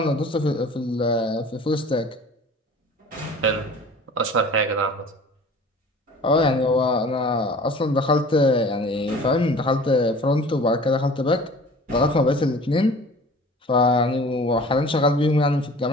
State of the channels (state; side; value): normal; both; correlation 0.45